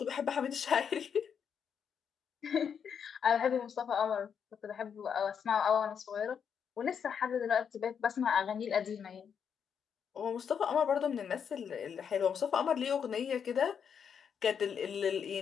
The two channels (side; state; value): right; quieter; 7.3 dB